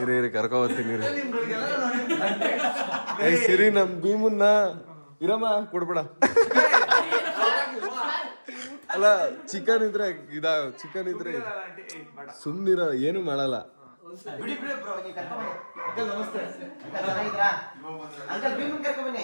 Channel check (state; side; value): inverted; both; correlation -1.00